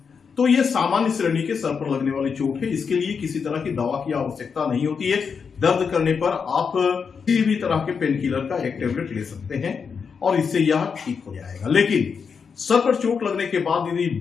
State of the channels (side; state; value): right; quieter; 6.0 dB